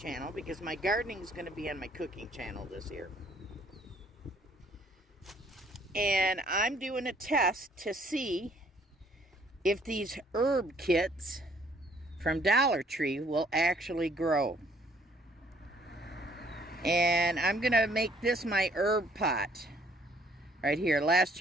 because my gardening is going to be on my cooking channel this year. And I'm doing a test to see if these herb kits from Dollar Tree will actually grow. And I'm going to make this my herb pot right here. Last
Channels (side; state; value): both; normal; correlation 0.62